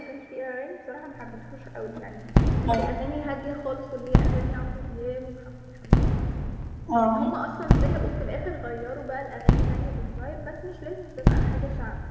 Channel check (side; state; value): both; identical; correlation 1.00